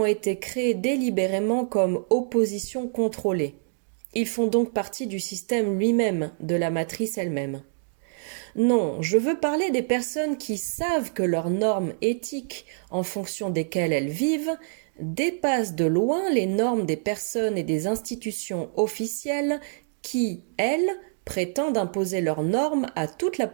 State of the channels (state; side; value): silent; left; digital silence